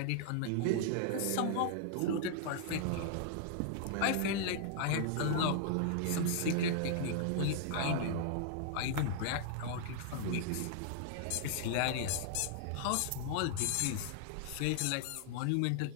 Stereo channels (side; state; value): both; different; correlation 0.00